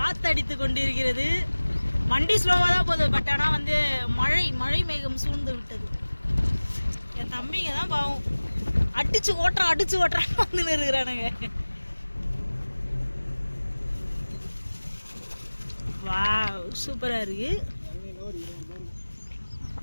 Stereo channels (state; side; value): inverted; both; correlation -1.00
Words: கொண்டிருக்கிறது. வண்டி ஸ்லோவாக தான் போகுது. பட் ஆனால் வந்து மழை மேகம் சூழ்ந்து விட்டது. என் தம்பிங்க தான் பாவம் அடிச்சு ஓட்டுறான் வந்து இருக்கிறானுங்க. வாவ் சூப்பரா இருக்கு.